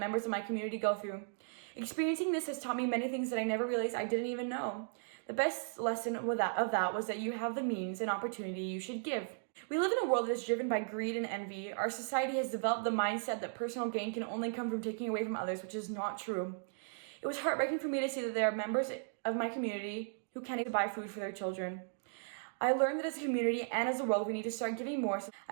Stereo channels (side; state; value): left; silent; digital silence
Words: of my community go through. Experiencing this has taught me many things that I never realized I didn't even know. The best lesson of that was that you have the means and opportunity you should give. We live in a world that is driven by greed and envy. Our society has developed the mindset that personal gain can only come from taking away from others, which is not true. It was heartbreaking for me to see that there are members of my community who can't even buy food for their children. I learned that as a community and as a world, we need to start giving more.